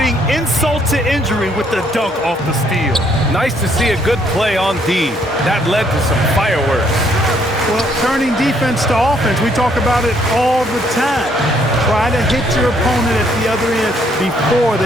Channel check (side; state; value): both; normal; correlation 0.68